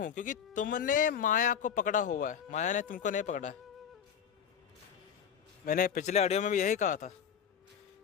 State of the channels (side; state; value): right; quieter; 8.1 dB